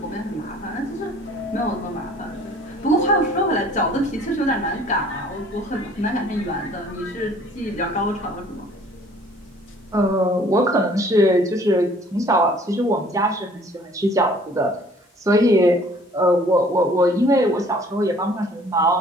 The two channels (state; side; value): normal; both; correlation 0.54